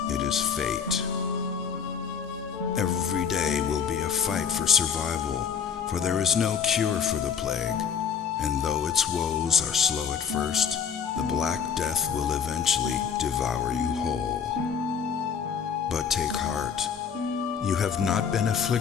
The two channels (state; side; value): quieter; right; 7.0 dB